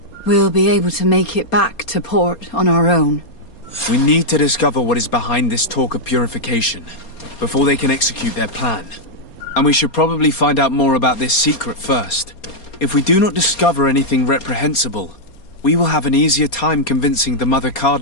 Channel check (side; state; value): right; late; 4.3 ms